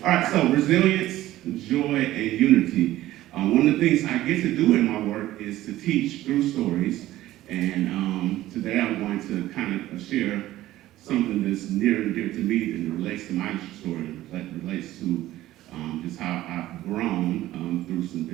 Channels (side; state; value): left; quieter; 15.2 dB